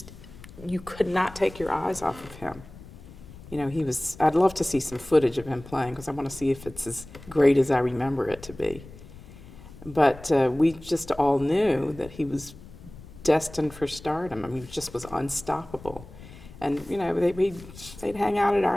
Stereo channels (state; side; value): noise; left; rumble, 18 dB below the sound